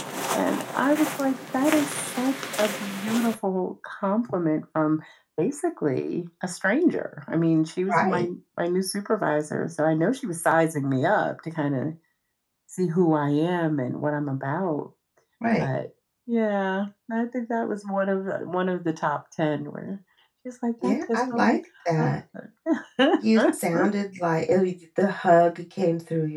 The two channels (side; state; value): both; identical; correlation 1.00